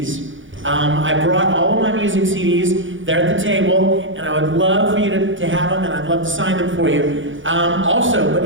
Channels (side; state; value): left; late; 0.56 ms